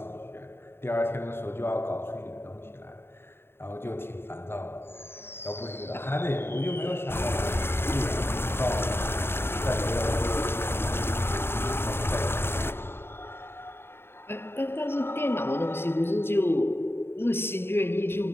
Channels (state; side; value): late; right; 0.11 ms